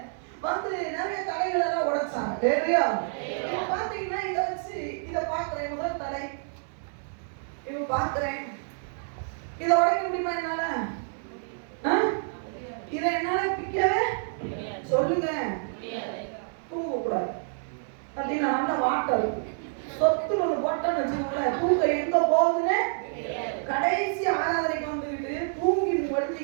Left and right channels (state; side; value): silent; left; 59 dB below the other